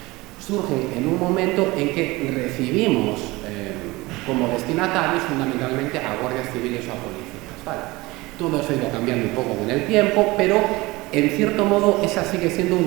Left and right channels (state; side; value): quieter; left; 21.5 dB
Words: surgen en un momento en que recibimos como destinatarios fundamentalmente a guardias civiles o a policías, ¿vale? Todo eso ha ido cambiando un poco con el tiempo, pero en cierto modo esa sigue siendo